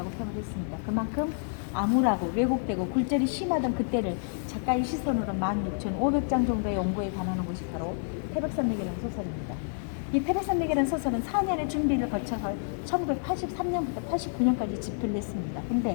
표현했습니다. 그만큼 암울하고 왜곡되고 굴절이 심하던 그때를 작가의 시선으로 16,500장 정도의 연구에 관하는 것이 바로 태백산맥이라는 소설입니다. 이 태백산맥이라는 소설은 4년의 준비를 거쳐서 1983년부터 89년까지 집필을 했습니다.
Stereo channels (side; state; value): right; silent; digital silence